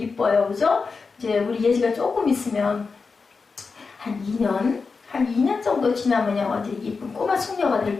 그죠? 이제 우리 예지가 조금 있으면 한 2년 정도 지나면요 완전 이쁜 꼬마 숙녀가 될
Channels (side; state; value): right; quieter; 4.7 dB